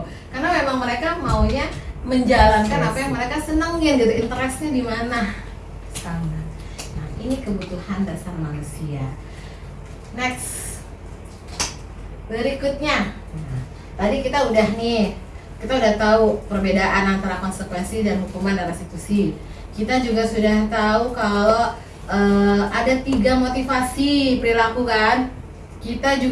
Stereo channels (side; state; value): both; identical; correlation 1.00